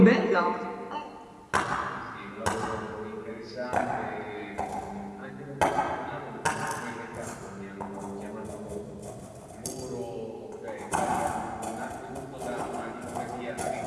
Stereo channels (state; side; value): identical; both; correlation 1.00